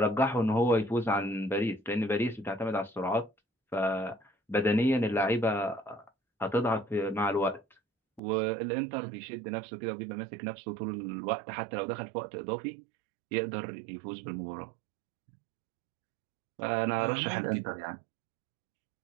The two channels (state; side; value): drops out; left; at 8.2 s